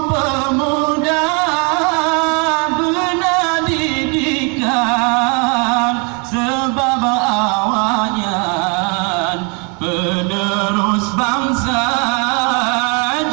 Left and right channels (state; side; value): quieter; left; 33.8 dB